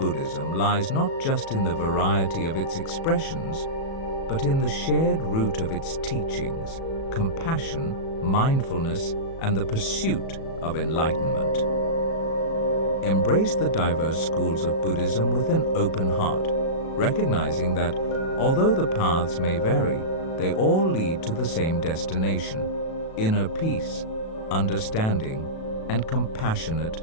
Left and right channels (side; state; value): right; late; 37 ms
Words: lies not just in the variety of its expressions, but in the shared root of its teachings, compassion, mindfulness, and the pursuit of enlightenment. Embrace the diverse schools of Buddhism with an open heart, recognizing that although the paths may vary, they all lead to the same destination: inner peace, understanding, and compassionate